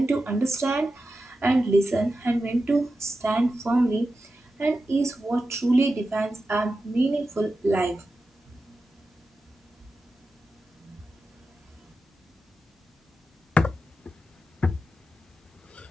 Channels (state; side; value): normal; both; correlation 0.91